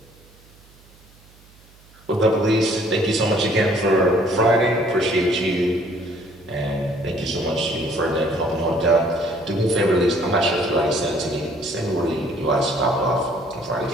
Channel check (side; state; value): right; noise; hum, 27 dB below the sound